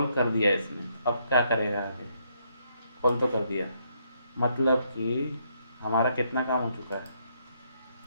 कर दिया इसने, अब क्या करेगा आगे, कॉल तो कर दिया, मतलब कि हमारा कितना काम हो चुका है।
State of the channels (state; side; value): inverted; both; correlation -0.74